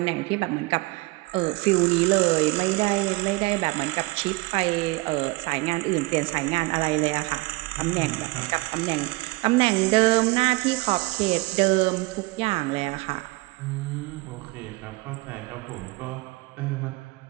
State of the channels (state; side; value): quieter; left; 22.8 dB